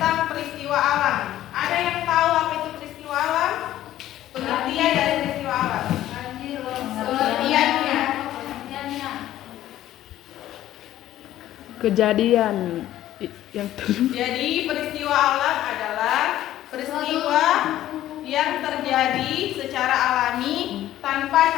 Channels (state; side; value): quieter; right; 13.4 dB